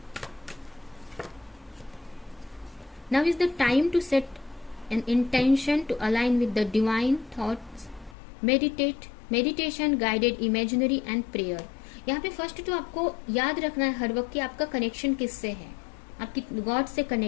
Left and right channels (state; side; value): drops out; right; at 8.2 s